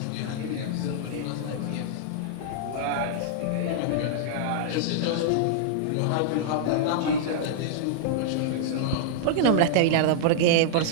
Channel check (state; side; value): different; both; correlation -0.01